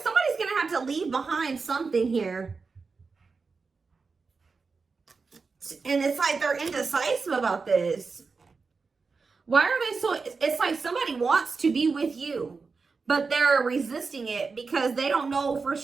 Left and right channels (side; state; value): left; quieter; 4.6 dB